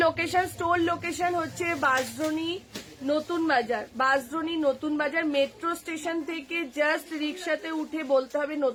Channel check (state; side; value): identical; both; correlation 1.00